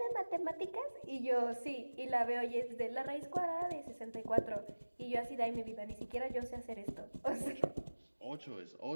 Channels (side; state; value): both; inverted; correlation -1.00